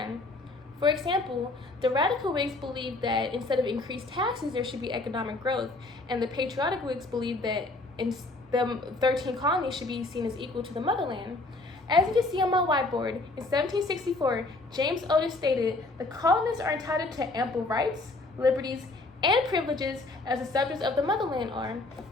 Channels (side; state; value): right; quieter; 3.1 dB